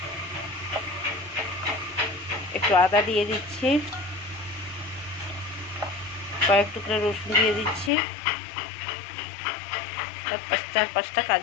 একটু আদা দিয়ে দিচ্ছি, কয়েক টুকরা রসুন দিয়ে দিচ্ছি, চার পাঁচটা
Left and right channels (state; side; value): drops out; right; at 7.9 s